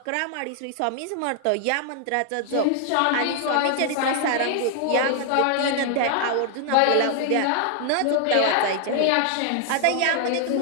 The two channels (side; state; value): both; different; correlation 0.00